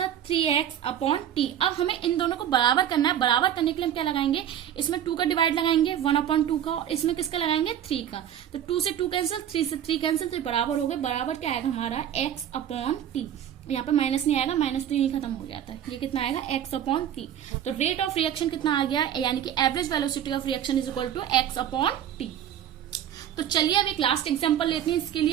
3x अपॉन टी। अब हमें इन दोनों को बराबर करना है। बराबर करने के लिए हम क्या लगाएंगे, इसमें 2 का डिवाइड लगाएंगे 1 अपॉन 2 का, और इसमें किसका लगाएंगे 3 का। तो 2 से 2 कैंसिल, 3 से 3 कैंसिल, तो बराबर हो गए। बराबर क्या आएगा हमारा x अपॉन टी, यहाँ पे माइनस नहीं आएगा, माइनस तो यही खत्म हो जाता है, ये कितना आएगा x अपॉन टी। तो रेट ऑफ रिएक्शन कितना आ गया, यानी कि average velocity of reaction is equal to x upon T. तो चलिए अब एक लास्ट एग्जांपल लेते हैं इसके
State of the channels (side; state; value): left; quieter; 10.2 dB